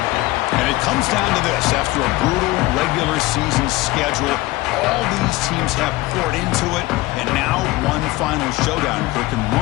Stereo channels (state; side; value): quieter; right; 19.4 dB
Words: And it comes down to this. After a brutal regular season schedule, all these teams have poured into it. And now one final showdown. And